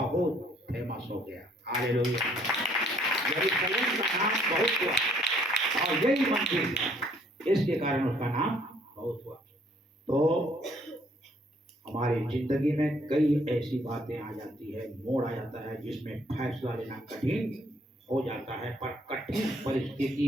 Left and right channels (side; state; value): both; normal; correlation 0.64